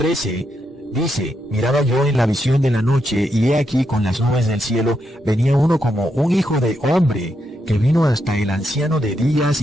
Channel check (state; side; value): normal; both; correlation 0.82